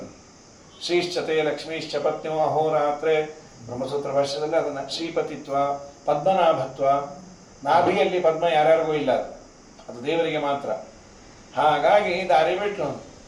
ಶ್ರೀಶ್ಚತೆ ಲಕ್ಷ್ಮೀಶ್ಚ ಪತ್ನಿಯೋ ಅಹೋರಾತ್ರೆ ಬ್ರಹ್ಮಸೂತ್ರ ಭಾಷ್ಯದಲ್ಲಿ ಅದನ್ನು ಶ್ರೀಪತಿತ್ವ, ಪದ್ಮನಾಭತ್ವ. ನಾಭಿಯಲ್ಲಿ ಪದ್ಮ ಯಾರ್ಯಾರಿಗೂ ಇಲ್ಲ, ಅದು ದೇವರಿಗೆ ಮಾತ್ರ. ಹಾಗಾಗಿ ದಾರಿ ಬಿಟ್ಟು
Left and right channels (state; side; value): identical; both; correlation 1.00